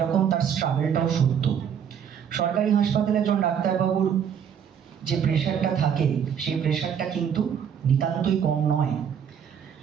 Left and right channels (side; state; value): left; quieter; 8.1 dB